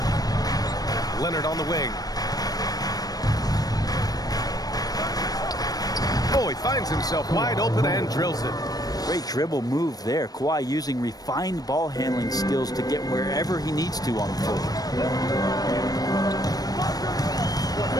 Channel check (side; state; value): right; late; 0.19 ms